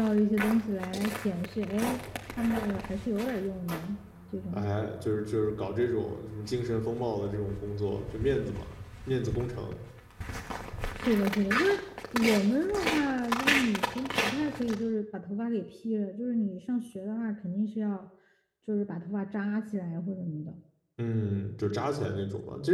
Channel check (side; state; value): both; identical; correlation 1.00